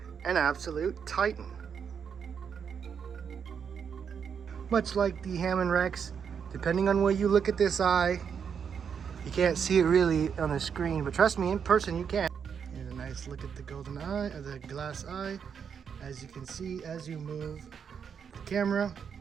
An absolute Titan. Much like the Hammond Rex, Depending on where you look at this eye, you can't see it really on the screen, but trust me, in person you can. Here's a nice look at the golden eye, or the glass eye. As you can see, as you move the camera,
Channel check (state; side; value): quieter; left; 7.1 dB